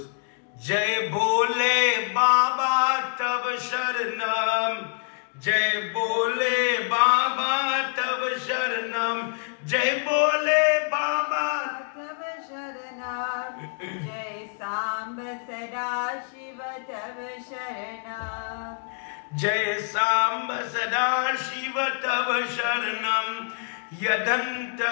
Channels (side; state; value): right; silent; 61 dB below the other